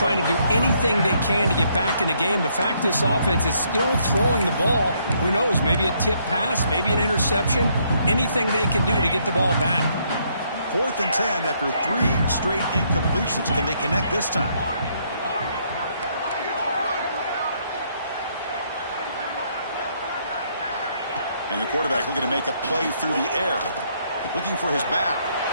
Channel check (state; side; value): inverted; both; correlation -0.71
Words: to do anything they can to get back in the game. The fact this offense is still throwing the ball, who knows, maybe a tip pass, maybe an interception, anything they can do to get the ball back. 4th and 10 after 3 straight incompletions. Can they connect this time? And the quarterback looking to make a play through the air. Looking for his back.